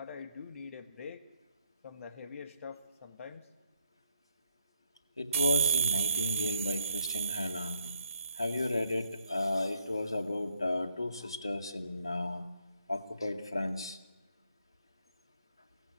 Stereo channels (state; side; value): inverted; both; correlation -0.72